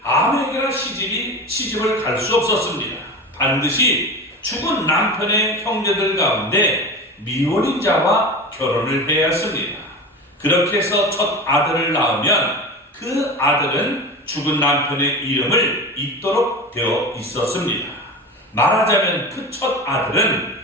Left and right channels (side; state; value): both; normal; correlation 0.29